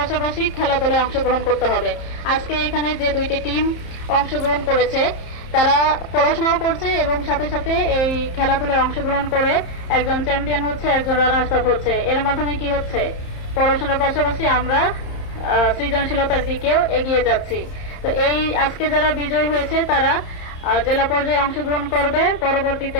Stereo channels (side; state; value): right; late; 30 ms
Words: খেলাধুলায় অংশগ্রহণ করতে হবে। আজকে এখানে যে দুইটি টিম অংশগ্রহণ করেছে, তারা পড়াশোনাও করছে এবং সাথে সাথে এই খেলাধুলায় অংশগ্রহণ করে একজন চ্যাম্পিয়ন হচ্ছে, একজন রানার্স আপ হচ্ছে। এর মাধ্যমে কি হচ্ছে, পড়াশোনার পাশাপাশি আমরা সৃজনশীলতার দিকেও এগিয়ে যাচ্ছি। তো এই আজকে যারা বিজয়ী হয়েছে তারা জেলা পর্যায়ে অংশগ্রহণ করবে,